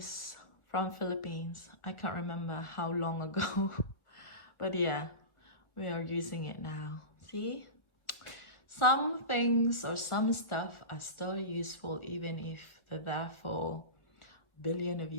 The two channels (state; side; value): late; right; 1.4 ms